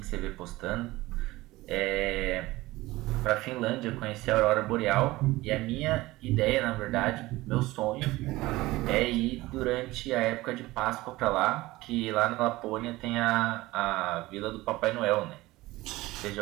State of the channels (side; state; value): left; quieter; 19.0 dB